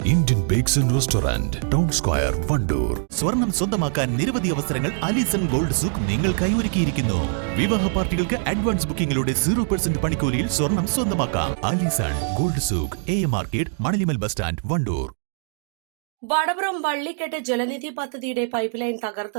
Indian bakes and restaurant, town square, Wandoor. സ്വർണം സ്വന്തമാക്കാൻ നിരവധി അവസരങ്ങൾ അലിസൺ ഗോൾഡ് സൂക്ക് നിങ്ങൾക്കായി ഒരുക്കിയിരിക്കുന്നു. വിവാഹ പാർട്ടികൾക്ക് അഡ്വാൻസ് ബുക്കിംഗിലൂടെ 0% പണിക്കൂലിയിൽ സ്വർണം സ്വന്തമാക്കാം. Alison gold souk, AM market, മണലിമൽ ബസ് സ്റ്റാൻഡ്, വണ്ടൂർ. വടപുറം വള്ളിക്കെട്ട് ജലനിധി പദ്ധതിയുടെ പൈപ്പ് ലൈൻ തകർത്ത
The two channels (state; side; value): silent; left; 56 dB below the other